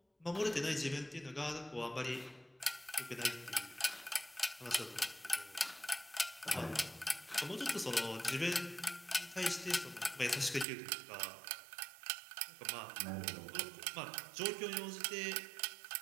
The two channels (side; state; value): left; drops out; at 10.7 s